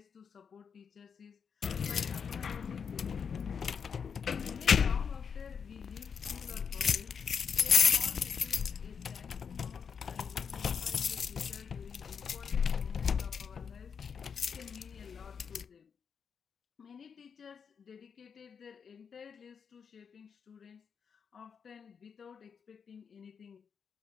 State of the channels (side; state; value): right; quieter; 6.6 dB